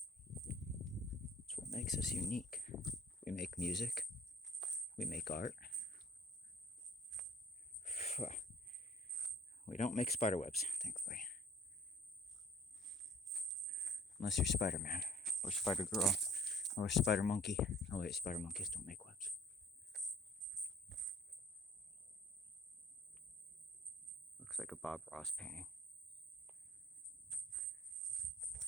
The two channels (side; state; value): both; normal; correlation 0.54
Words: It's what makes us unique. We make music. We make art. We don't make spider webs, thankfully. Unless you're Spider-Man, or Spider-Girl, or Spider-Monkey. Oh wait, Spider-Monkeys don't make webs. Looks like a Bob Ross painting.